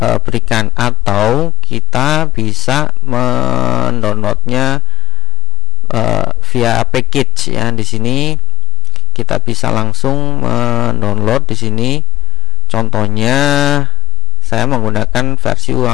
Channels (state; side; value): quieter; right; 10.3 dB